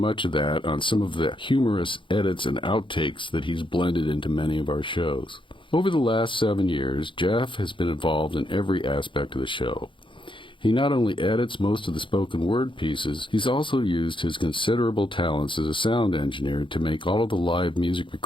of that on some of the humorous edits and outtakes that he's blended into many of our shows. Over the last 7 years, Jeff has been involved in every aspect of the show. He not only edits most of the spoken word pieces, he's also used his considerable talents as a sound engineer to make all of the live music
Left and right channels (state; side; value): late; right; 0.24 ms